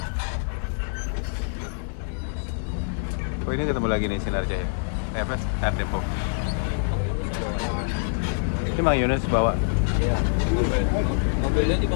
Oh, ini ketemu lagi nih Sinar Jaya. TFS Air Depok. Ini Mang Yunus bawa. Iya. Mobilnya di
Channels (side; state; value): right; silent; digital silence